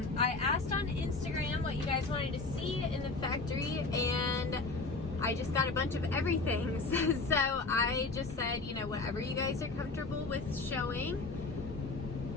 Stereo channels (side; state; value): right; quieter; 3.7 dB